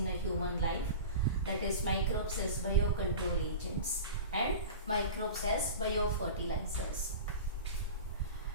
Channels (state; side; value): inverted; both; correlation -0.31